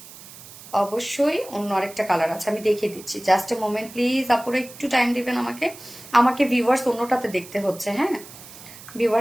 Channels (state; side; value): noise; right; hiss, 17 dB below the sound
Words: অবশ্যই অন্য আরেকটা কালার আছে, আমি দেখিয়ে দিচ্ছি। জাস্ট এ মোমেন্ট প্লিজ আপুরা, একটু টাইম দিবেন আমাকে। আমাকে ভিউয়ার্স অন্যটাতে দেখতে হচ্ছে। হ্যাঁ,